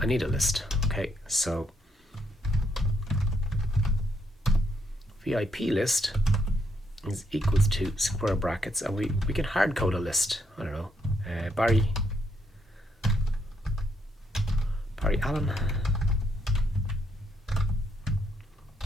a list. Okay, so VIP list is equals to square brackets, and we can hard code a list. I don't know, Barry Allen.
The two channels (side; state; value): both; normal; correlation 0.75